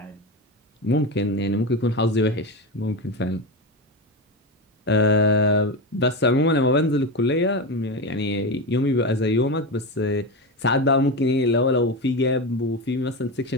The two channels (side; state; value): both; normal; correlation 0.18